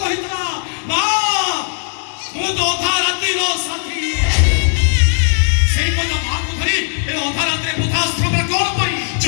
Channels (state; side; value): silent; right; 60 dB below the other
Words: କହିଥିଲା ମା ମୁଁ ତ ଅଧା ରାତିର ସାଥୀ ସେଇ ପୁଅ ତା ମାଆକୁ ଧରି ଏ ଅଧା ରାତିରେ ବୃଦ୍ଧାଶ୍ରମରେ କଣ ପାଇଁ